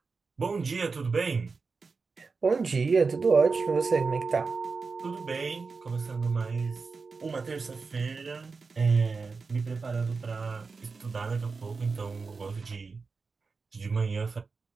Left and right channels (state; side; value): quieter; left; 4.6 dB